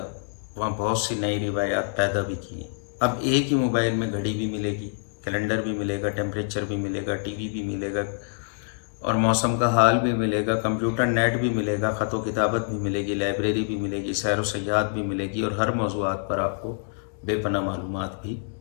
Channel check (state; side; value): silent; right; 61 dB below the other